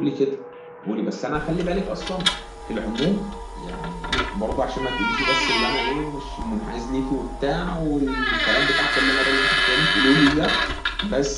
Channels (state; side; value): identical; both; correlation 1.00